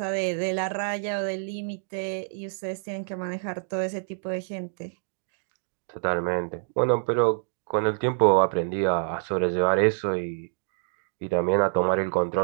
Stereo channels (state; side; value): silent; left; digital silence